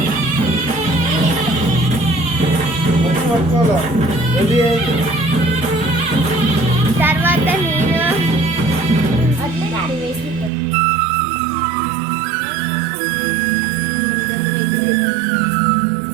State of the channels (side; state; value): left; drops out; at 10.5 s